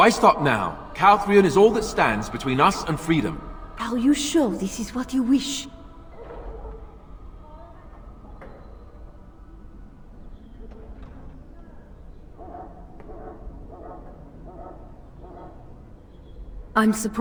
stop now? Calthrion is all that stands between us and freedom. Are you sure this is what you wish? I'm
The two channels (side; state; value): both; identical; correlation 1.00